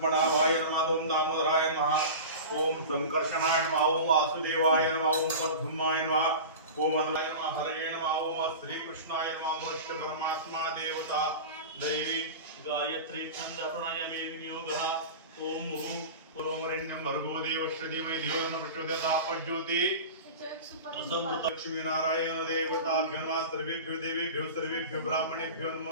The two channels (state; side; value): inverted; both; correlation -0.31